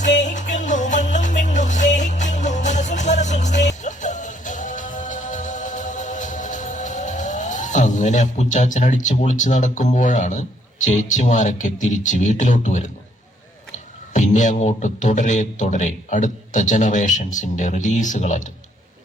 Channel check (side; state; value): both; normal; correlation 0.67